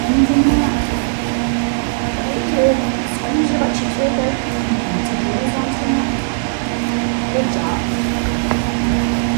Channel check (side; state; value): left; silent; digital silence